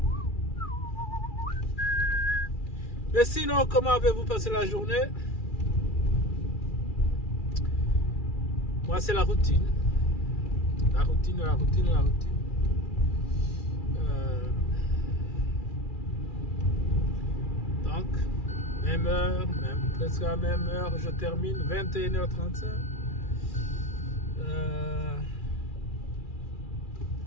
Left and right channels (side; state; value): right; late; 2.4 ms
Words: Mais sinon, comment avez-vous passé la journée? Moi, c'est la routine. La routine. Donc, même heure, presque à la même heure, je termine, 21h35.